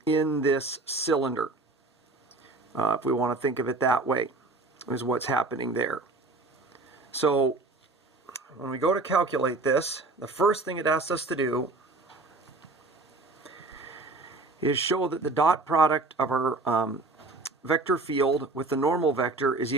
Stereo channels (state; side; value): quieter; left; 3.4 dB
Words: this cylinder. If we want to think of it that way, is what's happening there. So when we go to calculate this, the first thing it asks us to do is show that the dot product of our vector field with the normal vector is